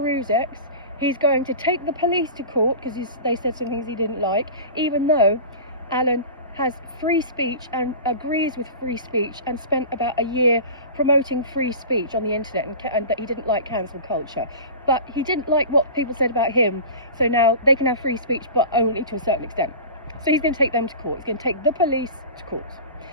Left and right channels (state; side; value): inverted; both; correlation -0.34